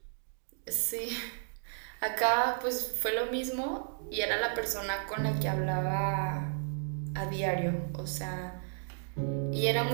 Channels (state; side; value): silent; left; digital silence